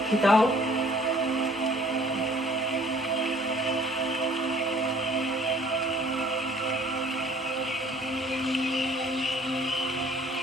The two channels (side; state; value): both; normal; correlation 0.56